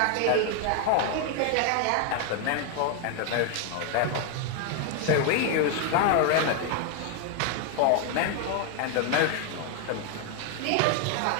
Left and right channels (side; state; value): both; different; correlation 0.00